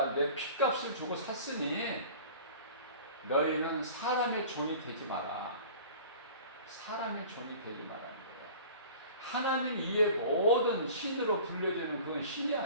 핏값을 주고 샀으니 너희는 사람의 종이 되지 마라. 사람의 종이 되지 말라는 거야. 하나님 이외의 모든 신으로 불려지는 그건 신이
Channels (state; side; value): inverted; both; correlation -0.42